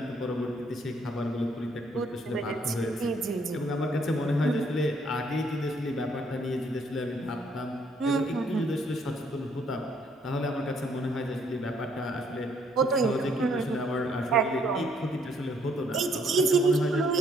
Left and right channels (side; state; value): both; normal; correlation 0.67